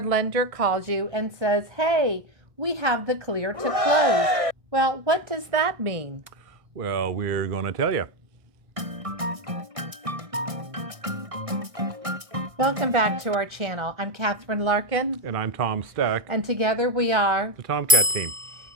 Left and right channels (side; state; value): left; late; 1.6 ms